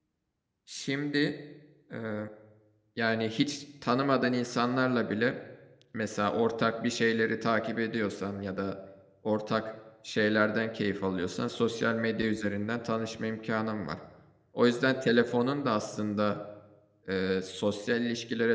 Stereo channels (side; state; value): both; identical; correlation 1.00